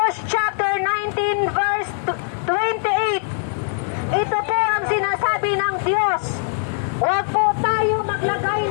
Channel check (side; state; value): right; silent; 65 dB below the other